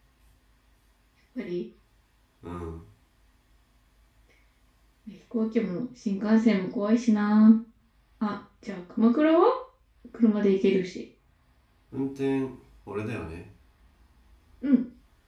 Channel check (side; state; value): both; identical; correlation 1.00